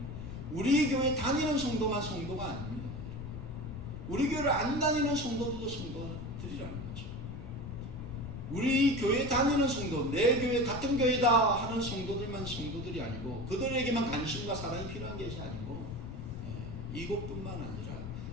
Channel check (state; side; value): noise; left; rumble, 9 dB below the sound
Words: 우리 교회 다니는 성도만 성도가 아닙니다. 우리 교회를 안 다니는 성도들도 성도들이라는 거죠. 우리 교회 다니는 성도, 내 교회 같은 교회다 하는 성도들만 성도들이 아니고, 그들에게만 관심과 사랑이 필요한 것이 아니고, 이곳뿐만 아니라